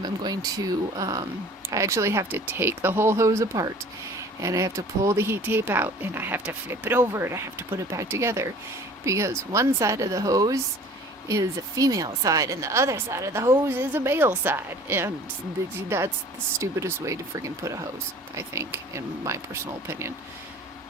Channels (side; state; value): both; normal; correlation 0.47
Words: I'm going to, I actually have to take the whole hose apart, and I have to pull the heat tape out, and I have to flip it over, and I have to put it back together, because one side of the hose is a female side and the other side of the hose is a male side, and that's the stupidest way to freaking put a hose, I think, in my personal opinion,